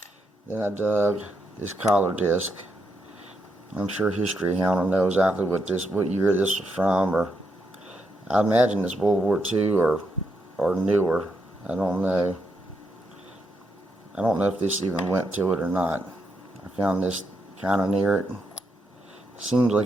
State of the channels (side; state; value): both; normal; correlation 0.80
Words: Then I dug this collar disc. I'm sure History Hound will know exactly what year this was from, or I imagine it's World War II or newer. I don't know. I don't know if this even went to it or not. I found this kind of near it. Seems